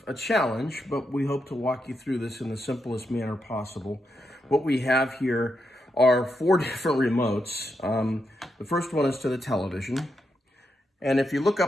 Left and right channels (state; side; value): normal; both; correlation 0.84